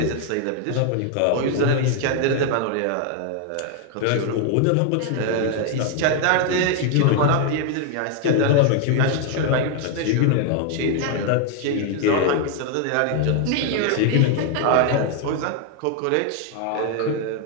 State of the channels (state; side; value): different; both; correlation 0.01